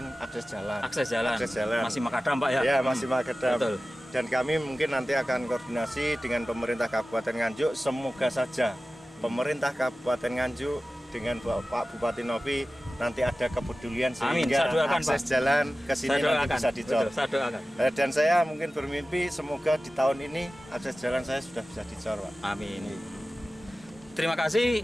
akses jalan. Akses jalan. Masih makadam Pak ya? Ya, masih makadam. Betul. Dan kami mungkin nanti akan koordinasi dengan pemerintah Kabupaten Nganjuk. Semoga saja pemerintah Kabupaten Nganjuk dengan Pak Bupati Novi nanti ada kepedulian Amin, sehingga saya doakan, akses Pak. jalan ke sini Saya nanti doakan. bisa dicor. Betul, saya doakan. Dan saya mungkin bermimpi semoga di tahun ini akses jalan saya sudah bisa dicor, Pak. Amin. Terima kasih.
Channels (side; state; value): both; normal; correlation 0.96